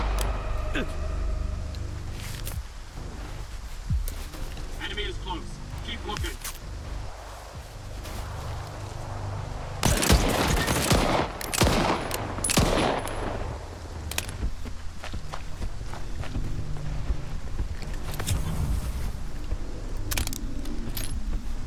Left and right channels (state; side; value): identical; both; correlation 1.00